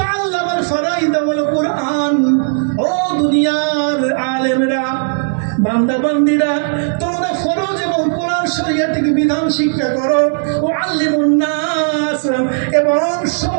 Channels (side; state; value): left; silent; 62 dB below the other